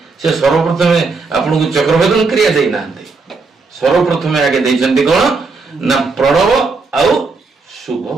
से सर्वप्रथम आपन को चक्रभेदन क्रिया देना सर्वप्रथम आगे देते कौन ना प्रणव आउ शुभ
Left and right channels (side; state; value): left; quieter; 4.2 dB